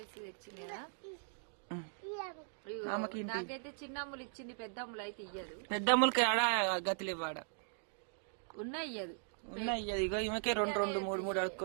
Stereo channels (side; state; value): left; silent; digital silence